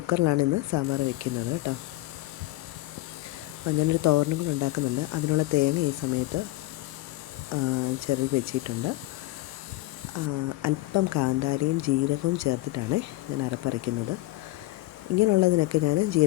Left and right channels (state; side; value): quieter; right; 18.0 dB